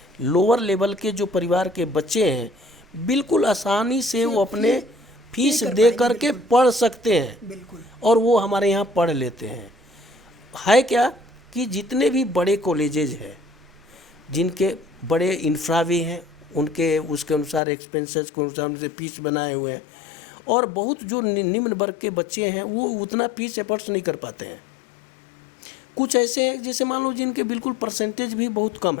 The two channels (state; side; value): drops out; right; at 17.6 s